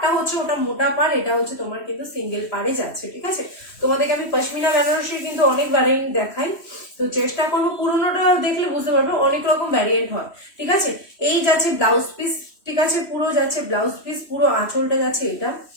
হচ্ছে ওটা মোটা পাড়, এটা হচ্ছে তোমার কিন্তু সিঙ্গেল পাড়ে যাচ্ছে, ঠিক আছে। তোমাদেরকে আমি পশমিনা বেনারসির কিন্তু অনেক ভ্যারিয়েন্ট দেখাই, তো চেষ্টা করবো পুরোনোটা দেখলে বুঝতে পারবে অনেক রকম ভ্যারিয়েন্ট হয়, ঠিক আছে। এই যাচ্ছে ব্লাউজ পিস, ঠিক আছে পুরো যাচ্ছে ব্লাউজ পিস, পুরো আঁচলটা যাচ্ছে এটা,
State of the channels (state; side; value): late; right; 3.1 ms